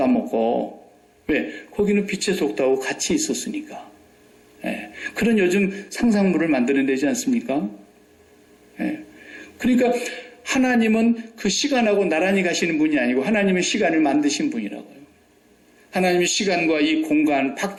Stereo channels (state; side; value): identical; both; correlation 1.00